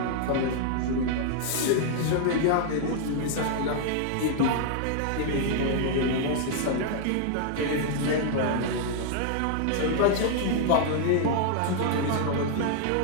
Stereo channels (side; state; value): both; different; correlation -0.01